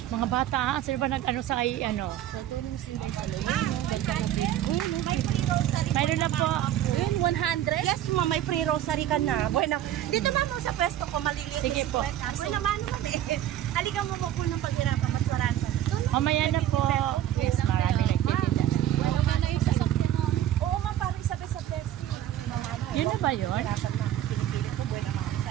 Mga bata, sino ba nag-ano sa kay ano? Sa tulong silang sa loob. Ganda na din. May free rosary. Mayroon na po. Yun, 100? Yes, ma'am, may free rosary ka na. Bueno, dito ma'am sa pwesto ko, maliliit. Sige po. Bueno, naman eh. Halika mo po ng paghirapan, mas marami pa. Mamaya na po. Yes, marami nagtitinda na. Bueno, ka na yung sasakyan mo. Oo, ma'am, parang sabi sa pwesto. Yun na ba yun? Pinipili ko, bueno, mga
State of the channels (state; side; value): quieter; left; 12.1 dB